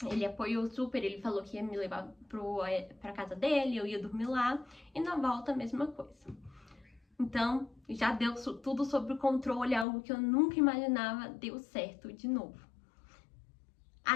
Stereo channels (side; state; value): right; drops out; at 9.9 s